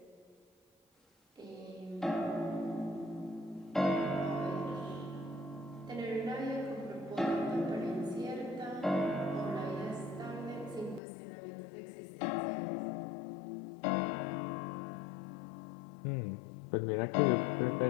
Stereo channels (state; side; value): drops out; right; at 11.0 s